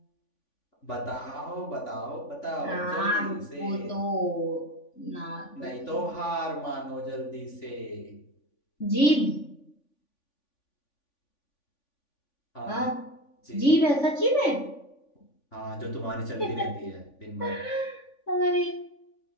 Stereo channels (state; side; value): late; right; 3.5 ms